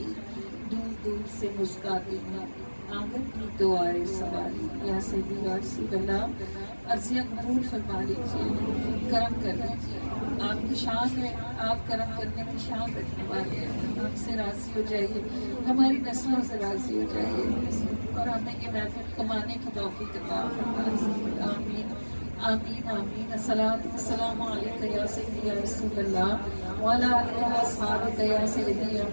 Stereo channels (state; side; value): inverted; both; correlation -1.00